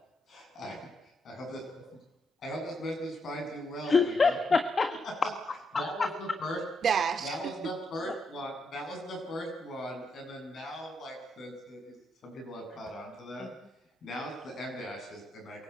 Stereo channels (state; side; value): normal; both; correlation 0.79